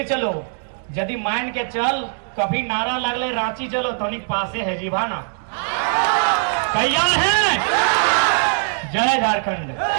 चलो, यदि मान के चल कभी नारा लगले रांची चलो तो पासे है जीवाना, तैयार है। जय झारखंड।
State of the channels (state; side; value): silent; left; digital silence